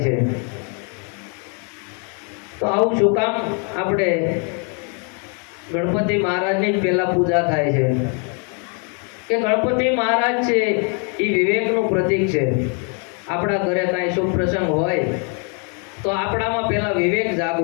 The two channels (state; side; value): quieter; right; 38.4 dB